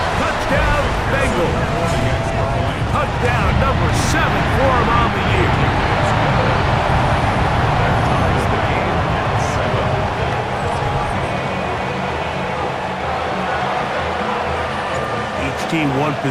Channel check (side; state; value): both; identical; correlation 1.00